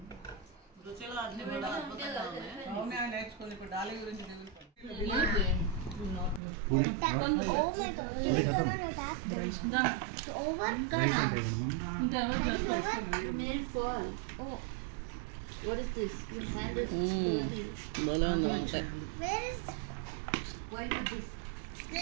రుచిలో అన్ని కూడా అద్భుతంగా ఉన్నాయి. నేర్చుకుంది ఇప్పుడు డాలి గురించి. భలే ఉంది వంకాయ.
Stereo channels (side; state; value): left; drops out; at 6.4 s